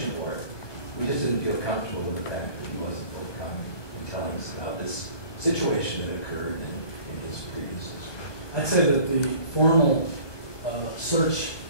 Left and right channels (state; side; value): late; right; 1.2 ms